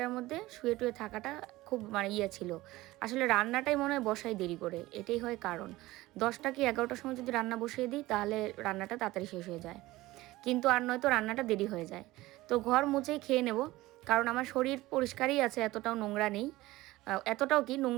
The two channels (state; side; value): quieter; left; 18.3 dB